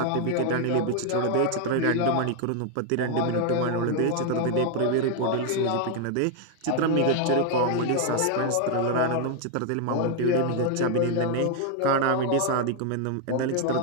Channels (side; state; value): both; different; correlation 0.00